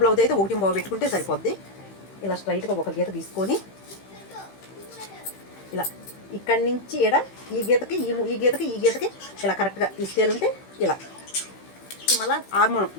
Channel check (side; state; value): right; late; 15 ms